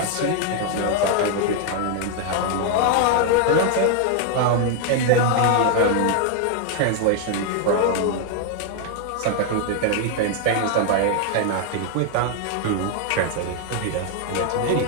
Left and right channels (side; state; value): both; different; correlation 0.00